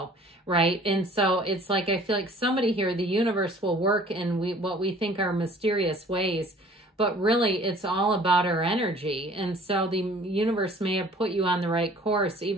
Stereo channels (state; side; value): normal; both; correlation 0.51